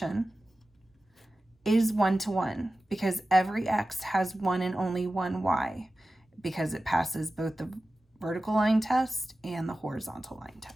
is 1 to 1 because every x has one and only one y, because it passes both the vertical line test and the horizontal line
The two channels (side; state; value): both; normal; correlation 0.95